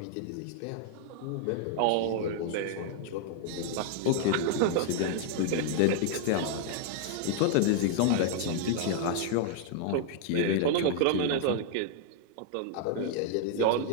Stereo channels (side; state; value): both; different; correlation 0.00